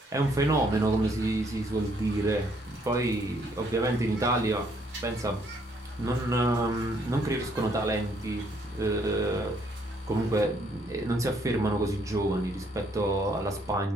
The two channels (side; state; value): both; normal; correlation 0.68